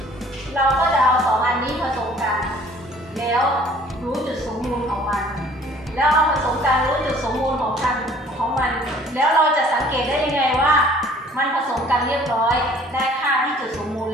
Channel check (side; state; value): both; normal; correlation 0.54